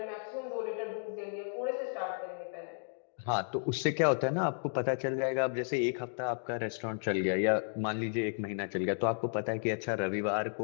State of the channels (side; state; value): right; silent; digital silence